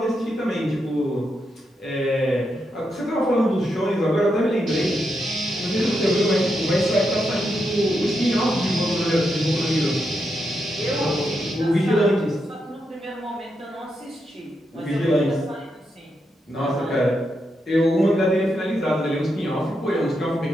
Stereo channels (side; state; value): both; normal; correlation 0.83